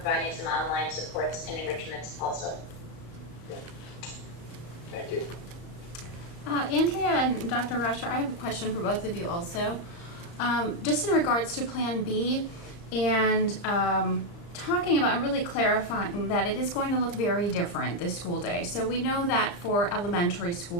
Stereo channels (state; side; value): late; right; 35 ms